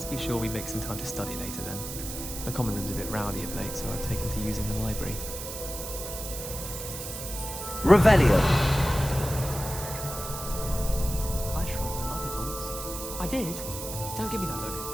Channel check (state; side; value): noise; right; hiss, 8 dB below the sound